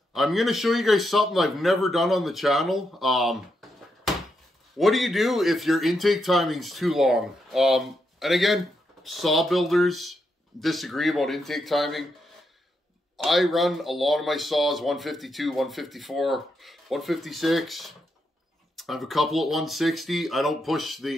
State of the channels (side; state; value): both; normal; correlation 0.82